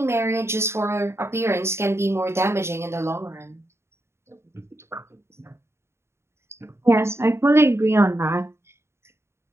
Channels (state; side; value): late; left; 0.13 ms